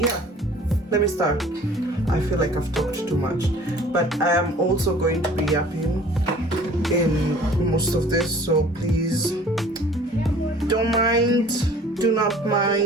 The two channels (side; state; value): both; normal; correlation 0.50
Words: yeah, let me start. I feel like I've talked too much, but I am also going to be yapping in most of this, so please don't mind, do not